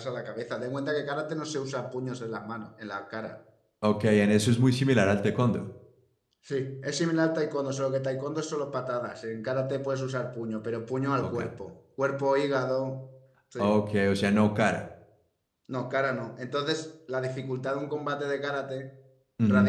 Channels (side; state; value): both; identical; correlation 1.00